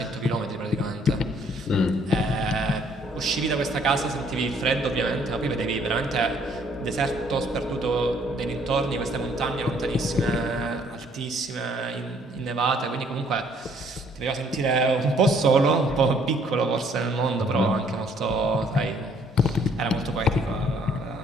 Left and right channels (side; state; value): both; normal; correlation 0.63